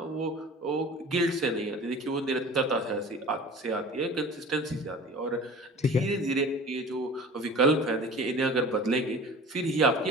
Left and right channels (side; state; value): both; normal; correlation 0.41